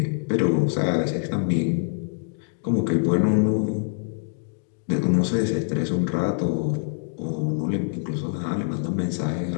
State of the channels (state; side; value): silent; right; digital silence